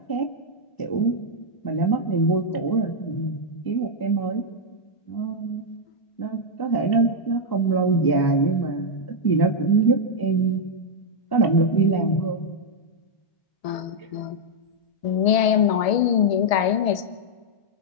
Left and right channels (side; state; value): right; late; 1.7 ms